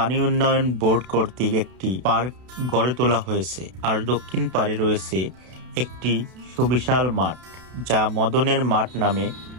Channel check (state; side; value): late; left; 32 ms